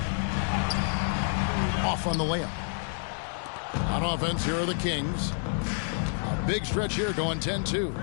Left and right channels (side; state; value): right; silent; 59 dB below the other